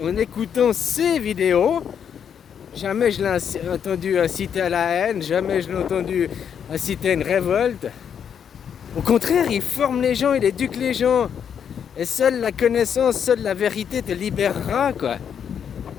en écoutant ces vidéos. Jamais je l'ai entendu inciter à la haine, jamais je l'ai entendu inciter à une révolte. Au contraire, il forme les gens, il éduque les gens. Et seule la connaissance, seule la vérité te libérera, quoi.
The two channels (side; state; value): right; quieter; 8.0 dB